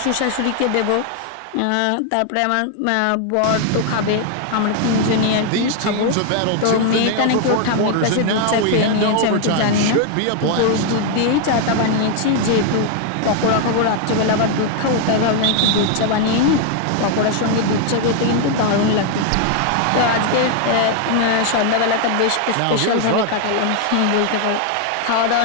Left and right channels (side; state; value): both; different; correlation 0.00